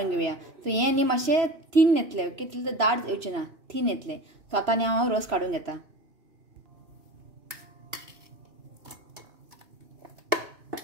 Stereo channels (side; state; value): left; late; 3.0 ms